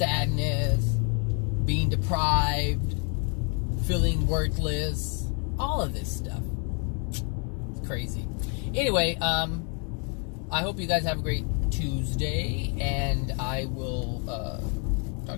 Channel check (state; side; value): quieter; right; 38.3 dB